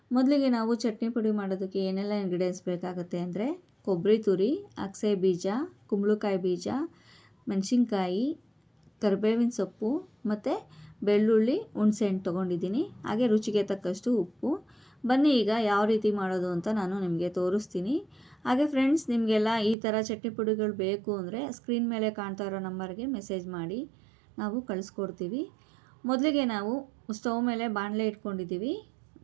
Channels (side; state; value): left; drops out; at 19.8 s